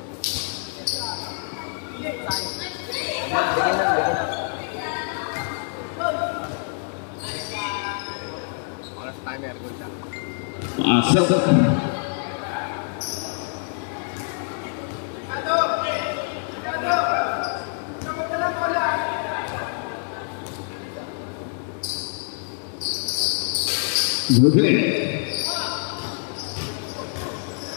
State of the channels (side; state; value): right; silent; 56 dB below the other